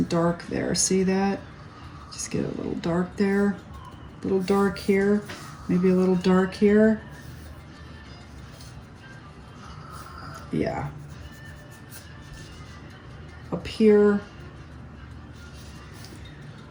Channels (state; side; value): identical; both; correlation 1.00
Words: dark there. See that? Just get a little dark there. A little dark here. Maybe a little dark here. Yeah. Up here,